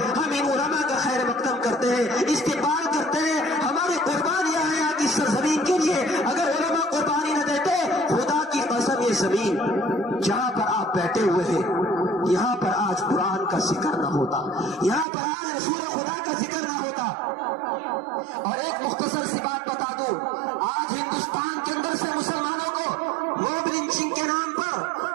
ہم ان علماء کا خیر مقدم کرتے ہیں, استقبال کرتے ہیں. ہماری قربانیاں ہیں آج اس سرزمین کے لیے. اگر علماء قربانی نہ دیتے, خدا کی قسم یہ زمین جہاں پر آپ بیٹھے ہوئے ہیں یہاں پر آج قرآن کا ذکر نہ ہوتا, یہاں پر آج رسول خدا کا ذکر نہ ہوتا. اور ایک مختصر سی بات بتا دوں, آج ہندوستان کے اندر سے مسلمانوں کو موب لنچنگ کے نام پر,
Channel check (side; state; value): left; drops out; at 15.1 s